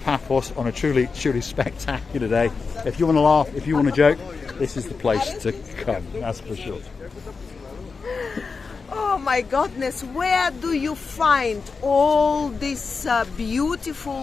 on a truly, truly spectacular day. If you want to laugh, if you want to joke, this is the place to come. That's for sure. Oh my goodness, where do you find all these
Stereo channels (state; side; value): quieter; right; 4.8 dB